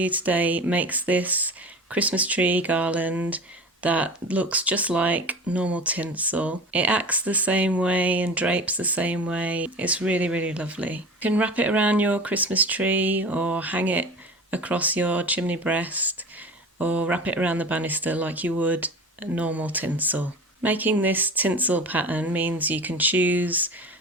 today makes this Christmas tree garland that looks just like normal tinsel. It acts the same way and drapes the same way. It's really, really lovely. You can wrap it around your Christmas tree or hang it across your chimney breast or wrap it around the banister like you would normal tinsel. Making this tinsel pattern means you can choose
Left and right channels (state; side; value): normal; both; correlation 0.34